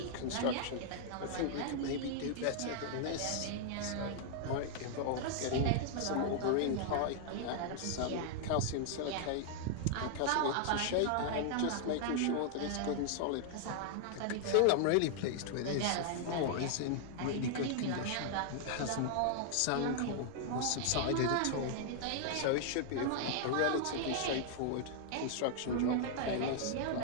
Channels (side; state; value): both; different; correlation -0.01